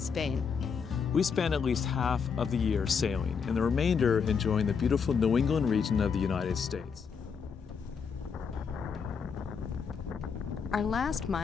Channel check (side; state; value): right; quieter; 6.1 dB